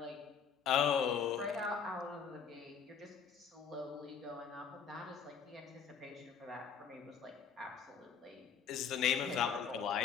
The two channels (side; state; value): right; quieter; 6.8 dB